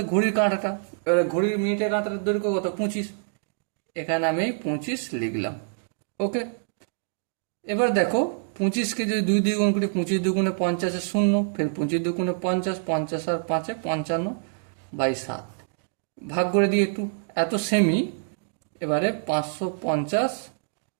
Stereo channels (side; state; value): left; silent; digital silence